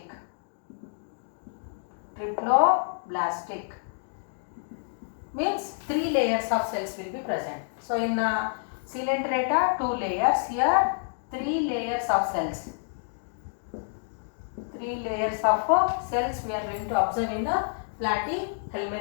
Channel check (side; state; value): right; silent; digital silence